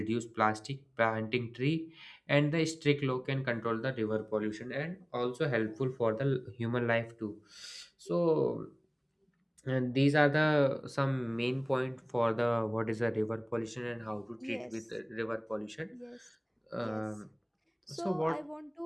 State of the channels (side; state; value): both; identical; correlation 1.00